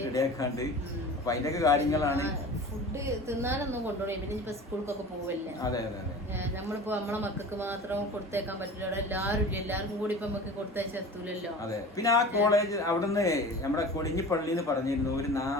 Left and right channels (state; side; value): normal; both; correlation 0.37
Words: റെഡിയാക്കാണ്ട് അപ്പൊ അതിന്റെയൊക്കെ കാര്യങ്ങളാണ്. ഫുഡ് തിന്നാനൊന്നും കൊണ്ടുപോയി പിന്നെ ഇപ്പൊ സ്കൂൾക്കൊക്കെ പോവല്ലേ. അതെ അതെ അതെ. നമ്മളിപ്പോ നമ്മളെ മക്കൾക്ക് മാത്രം കൊടുത്തേക്കാൻ പറ്റില്ല, അവിടെ എല്ലാവർക്കും കൂടി ഇപ്പൊ നമുക്ക് കൊടുത്തയച്ചെത്തൂലല്ലോ. അതെ. പിന്നെ ആ കോളേജ് അവിടുന്ന് നമ്മുടെ കൊടിഞ്ഞിപ്പള്ളിന്ന് പറഞ്ഞിരുന്നു ഒരു